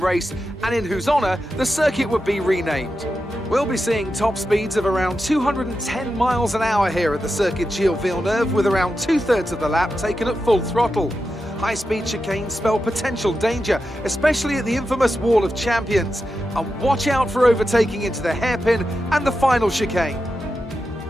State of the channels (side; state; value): both; normal; correlation 0.89